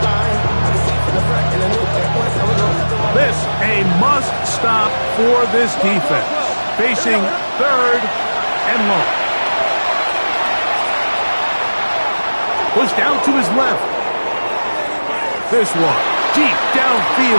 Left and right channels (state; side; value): inverted; both; correlation -1.00